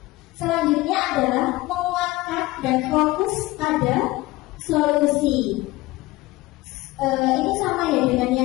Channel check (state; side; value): quieter; right; 19.4 dB